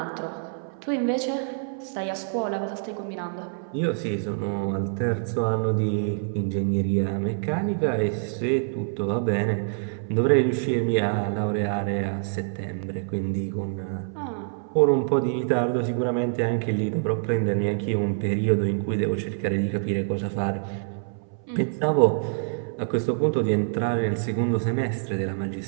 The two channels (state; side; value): silent; left; 61 dB below the other